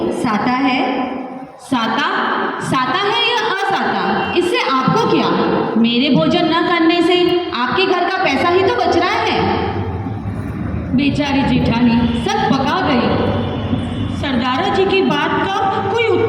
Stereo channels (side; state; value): both; identical; correlation 1.00